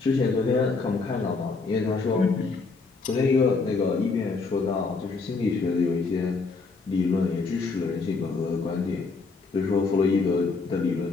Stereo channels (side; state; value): right; quieter; 4.2 dB